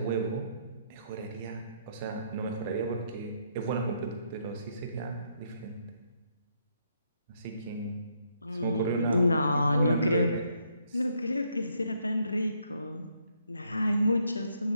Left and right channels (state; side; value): inverted; both; correlation -0.73